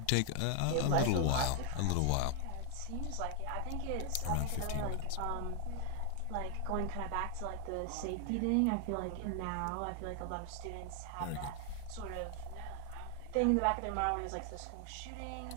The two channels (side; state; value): both; different; correlation 0.00